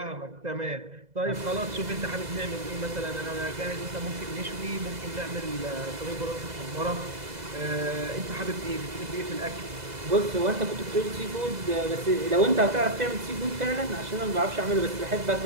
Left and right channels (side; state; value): left; late; 2.0 ms